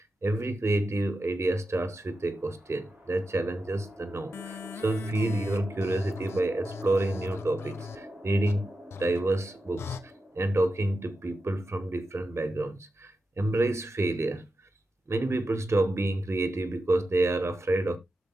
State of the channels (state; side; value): normal; both; correlation 0.90